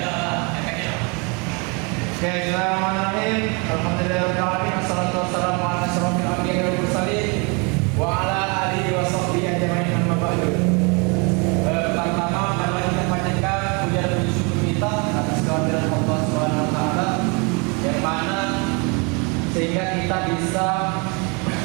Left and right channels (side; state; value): left; quieter; 31.5 dB